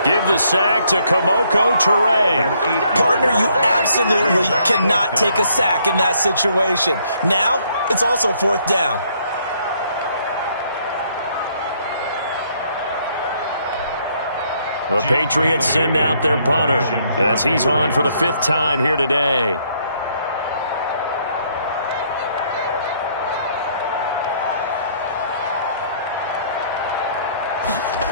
Give the sack to Komoko Toure. Partner, you absolutely cannot take a sack in that situation. Now, it's also 4th down. The Patriots send out their punter as he's on for the 5th time here today.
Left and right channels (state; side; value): inverted; both; correlation -0.68